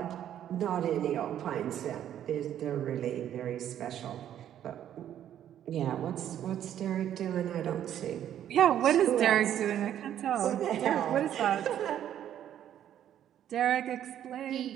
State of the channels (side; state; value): left; quieter; 10.7 dB